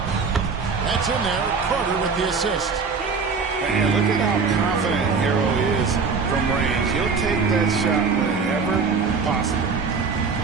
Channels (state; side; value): quieter; left; 5.0 dB